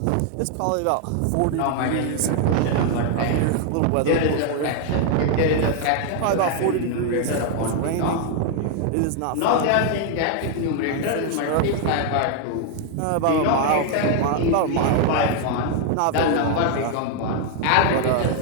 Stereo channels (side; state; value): both; different; correlation 0.00